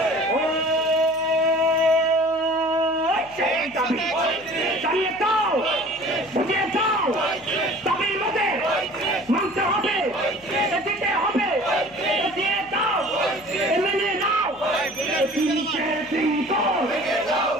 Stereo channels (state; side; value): noise; left; hum, 27 dB below the sound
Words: জানিয়ে দাও, বুঝিয়ে দাও, দাবির মধ্যে মানতে হবে, দিতে হবে, দিয়ে দাও, মেনে নাও। ৩০-এর শৃঙ্খল,